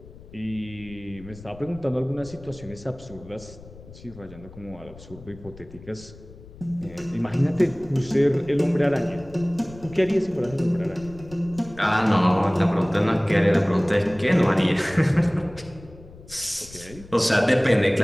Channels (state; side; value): noise; left; rumble, 19 dB below the sound